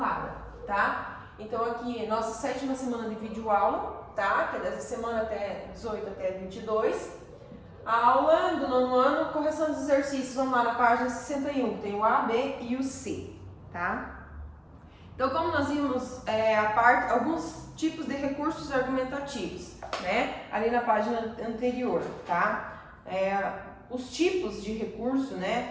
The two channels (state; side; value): identical; both; correlation 1.00